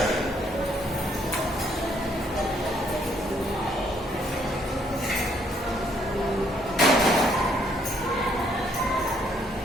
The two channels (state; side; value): normal; both; correlation 0.69